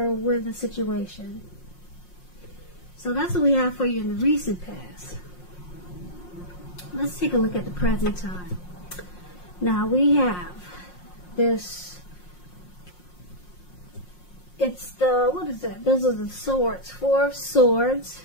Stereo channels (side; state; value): right; late; 5.6 ms